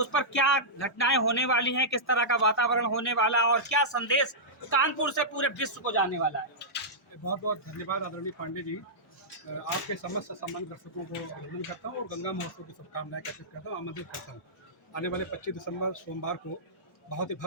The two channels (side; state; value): both; normal; correlation -0.14